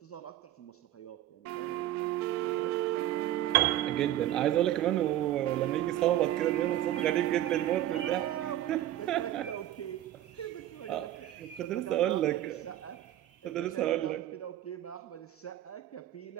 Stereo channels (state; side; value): quieter; left; 13.2 dB